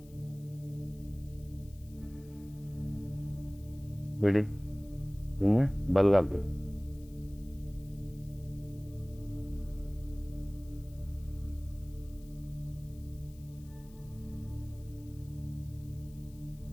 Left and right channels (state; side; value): noise; left; hiss, 26 dB below the sound